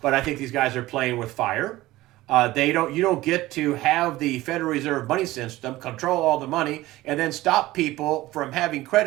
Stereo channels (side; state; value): left; quieter; 17.5 dB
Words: But I think these guys are playing with fire. You don't get to have the Federal Reserve money system control all the money and then stop people from having